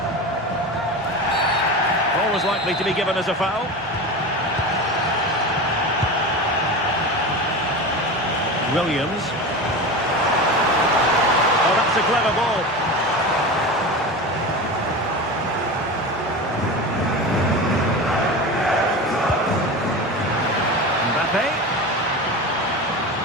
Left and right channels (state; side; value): normal; both; correlation 0.27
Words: Was likely to be given as a foul. Williams. Oh, that's a clever ball. Mbappe.